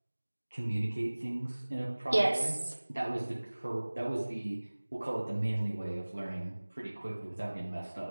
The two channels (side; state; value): both; inverted; correlation -1.00